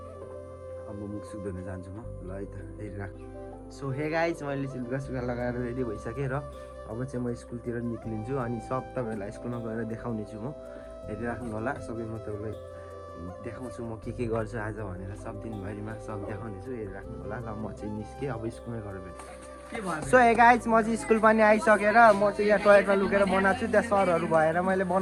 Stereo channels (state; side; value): identical; both; correlation 1.00